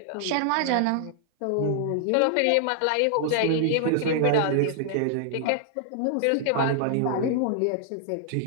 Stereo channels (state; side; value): different; both; correlation -0.01